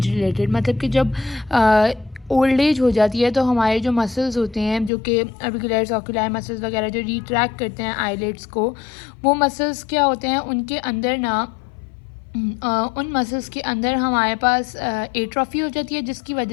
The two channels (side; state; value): right; drops out; at 4.9 s